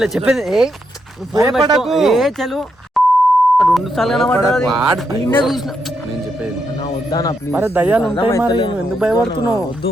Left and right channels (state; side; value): normal; both; correlation 0.81